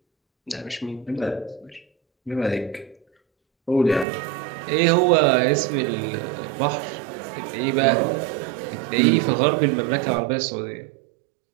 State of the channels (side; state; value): left; drops out; at 4.0 s